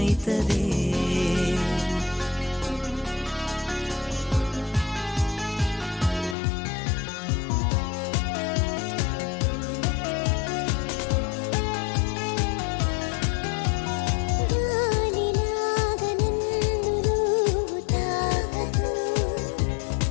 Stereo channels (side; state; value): right; drops out; at 6.4 s